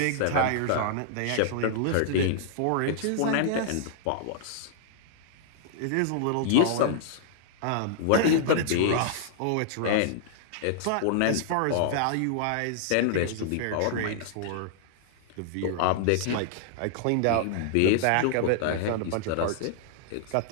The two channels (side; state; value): both; different; correlation -0.01